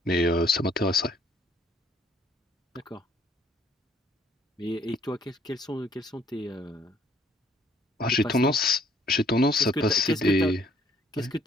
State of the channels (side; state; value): both; normal; correlation 0.62